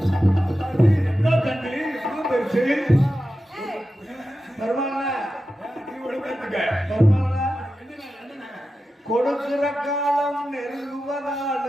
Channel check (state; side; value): normal; both; correlation 0.92